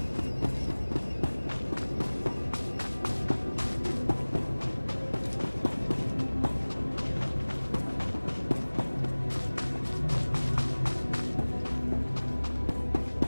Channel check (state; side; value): inverted; both; correlation -1.00